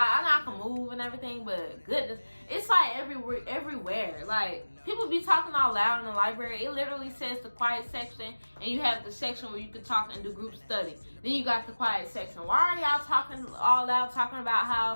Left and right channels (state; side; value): inverted; both; correlation -1.00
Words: know I can move and everything, but goodness, it's, like, everywhere. Like, people be talking all loud in the library. It literally says the quiet section, and you have the section where you can talk and do group study. Then you got the quiet section. Why are y'all talking all loud, talking about